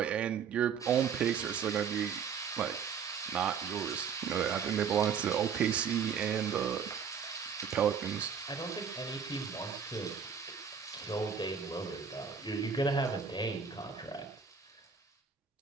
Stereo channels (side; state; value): left; quieter; 6.8 dB